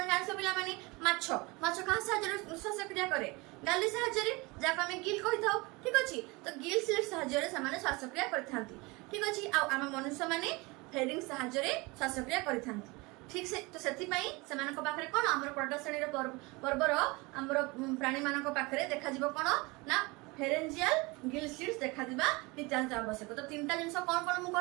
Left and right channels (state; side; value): quieter; left; 25.1 dB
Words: জাଣିଛ ପିଲାମାନେ ମାଛ କାହା ସାହାଯ୍ୟରେ ଶ୍ୱାସକ୍ରିୟା କରେ ଗାଲି ସାହାଯ୍ୟରେ ଯାହାକୁ ଆମେ ଗିଲ୍ କହିଥାଉ ଠିକ ଅଛି ତ ଗିଲ୍ ସ୍ଲିଟ୍ସ ସାହାଯ୍ୟରେ ସେମାନେ ଶ୍ୱାସକ୍ରିୟା କରିଥାନ୍ତି ଠିକ ଅଛି ଆଉ ଆମ ମନୁଷ୍ୟମାନେ ଫେରିଂସ୍ ସାହାଯ୍ୟରେ ଶ୍ୱାସକ୍ରିୟା କରିଥାନ୍ତି ঠিক তো ସେଥିପାଇଁ ସେମାନଙ୍କ ପାଖରେ କ'ଣ ଆମର ପ୍ରଡକ୍ଟ ଶ୍ରେଣୀର ପର୍ବର ଆମର ପ୍ରାଣୀମାନଙ୍କ ପାଖରେ ଦେଖାଯିବ କ'ଣ ନା ଫେରେଞ୍ଜିଆଲ ଗିଲ୍ ସ୍ଲିଟ୍ସ ଦେଖାଯିବା ନିତ୍ୟାନ୍ତ ଆବଶ୍ୟକ ତ ତିନିଟା ଜିନିଷ କ'ଣ କ'ଣ ମୁଁ